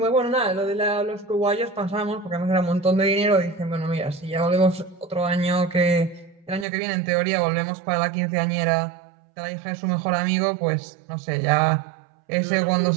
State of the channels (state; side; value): drops out; left; at 6.7 s